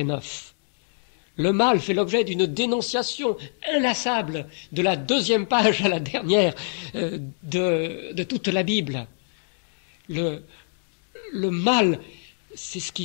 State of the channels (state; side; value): silent; right; 62 dB below the other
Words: 9. Le mal fait l'objet d'une dénonciation inlassable de la deuxième page à la dernière de toute la Bible. Le mal, c'est ce